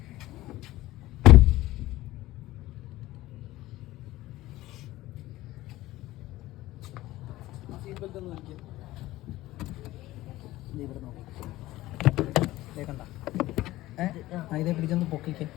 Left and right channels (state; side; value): quieter; right; 16.8 dB